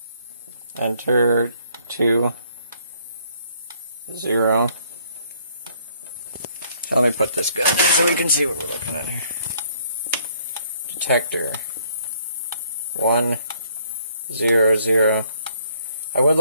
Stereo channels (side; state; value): both; inverted; correlation -0.66